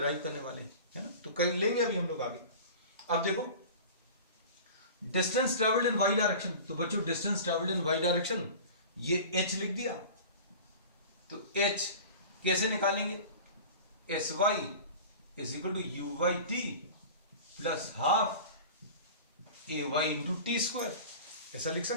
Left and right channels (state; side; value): inverted; both; correlation -0.38